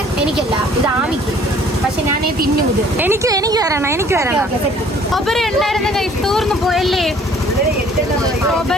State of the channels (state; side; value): normal; both; correlation 0.56